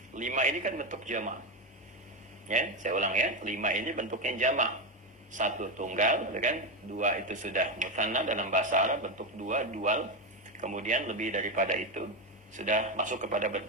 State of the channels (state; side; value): normal; both; correlation 0.11